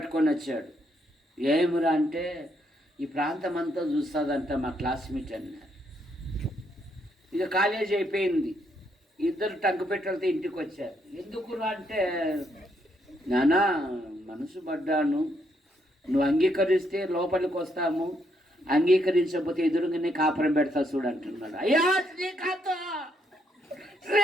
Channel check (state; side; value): normal; both; correlation 0.74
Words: వచ్చాడు. ఏమిరా అంటే ఈ ప్రాంతం అంతా చూస్తుందంట మా క్లాస్మేట్ అన్నారు. ఇక కాలేజీ అయిపోయింది, 2 టంకు పెట్టలతో ఇంటికి వచ్చారు. ఎందుకురా అంటే, నానా మనసు పడ్డాను, నువ్వు అంగీకరిస్తే లోపలికి వస్తాము, అంగీకరించకపోతే ఎదురుగానే కాపురం పెడతా చూడు అంటున్నాడు. అయ్యా శ్రీకాంత్